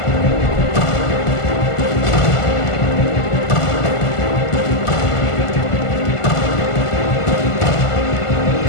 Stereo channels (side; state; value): right; late; 1.5 ms